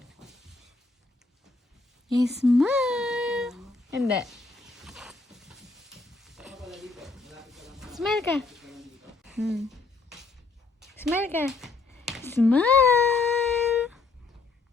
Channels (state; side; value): quieter; right; 3.7 dB